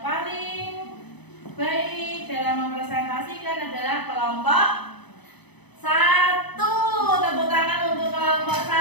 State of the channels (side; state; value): right; late; 0.99 ms